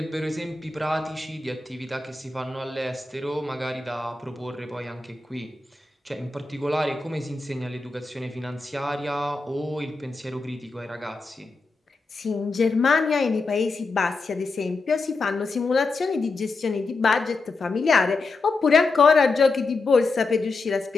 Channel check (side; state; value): right; quieter; 3.7 dB